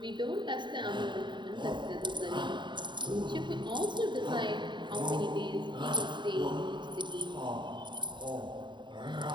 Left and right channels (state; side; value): late; left; 0.23 ms